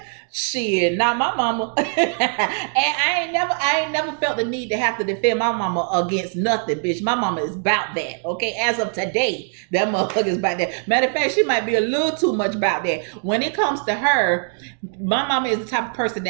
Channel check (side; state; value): left; silent; 60 dB below the other